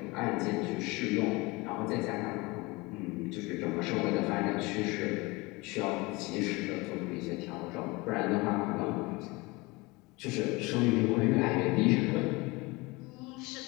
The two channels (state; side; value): quieter; right; 24.1 dB